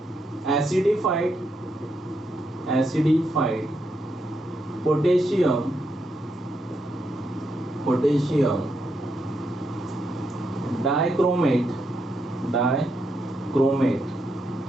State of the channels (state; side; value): normal; both; correlation 0.81